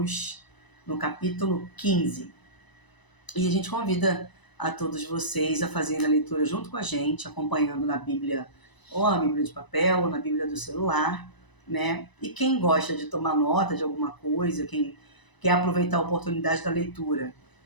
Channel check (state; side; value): late; right; 1.0 ms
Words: no capítulo 15. E a gente convida a todos vocês a fazerem a leitura junto com a gente, acompanhando na Bíblia, ou na Bíblia de papel, ou na Bíblia do celular, né? E quem gosta de tomar nota de alguma coisa, quem quer aproveitar a oportunidade da leitura